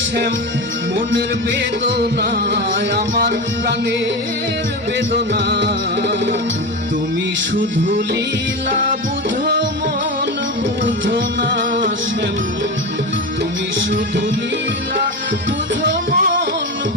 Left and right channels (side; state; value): both; normal; correlation 0.20